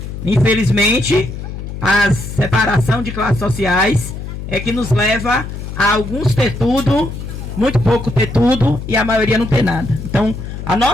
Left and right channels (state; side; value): noise; left; hum, 8 dB below the sound